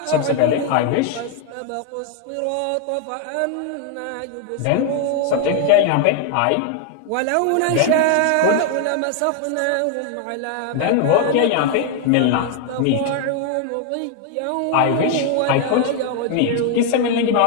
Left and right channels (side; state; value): both; different; correlation 0.00